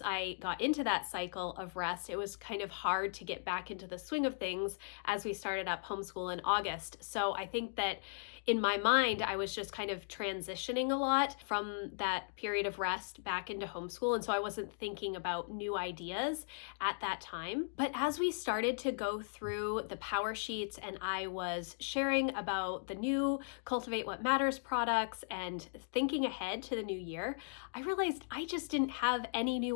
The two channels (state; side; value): silent; right; digital silence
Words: I got into that cycle of rest, it was kind of hard to get back into the swing of things as we started up homeschool in August. So I think that in my mind, I was just kind of transitioning a lot from that period of rest back into homeschool. And so I wasn't thinking about new ideas at that time. But as we started to go through the power sheet and I was sharing about the new Cultivate What Matters products and thinking ahead to the new year, I realized I just didn't have any